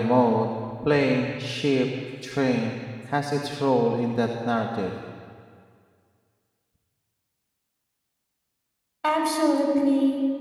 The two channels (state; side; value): identical; both; correlation 1.00